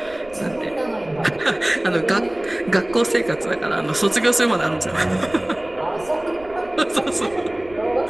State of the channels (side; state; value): right; noise; rumble, 22 dB below the sound